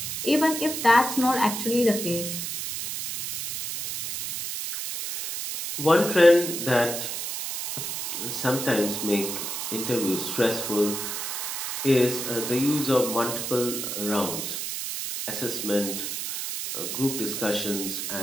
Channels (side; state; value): right; noise; hiss, 4 dB below the sound